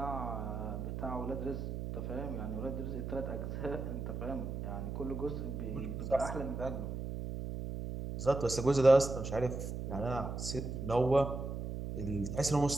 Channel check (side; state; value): right; noise; hum, 5 dB below the sound